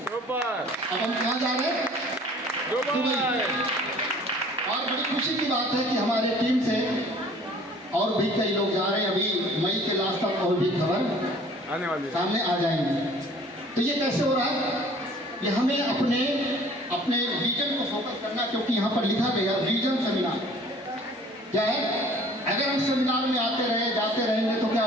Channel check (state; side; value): normal; both; correlation 0.51